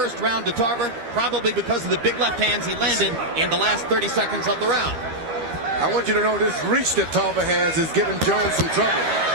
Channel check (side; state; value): left; late; 13 ms